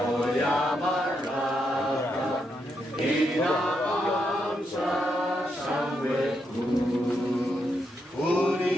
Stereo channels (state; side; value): normal; both; correlation 0.81